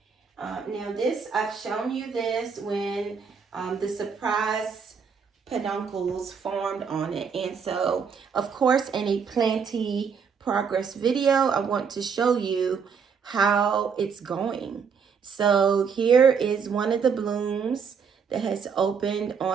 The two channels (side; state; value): left; quieter; 6.2 dB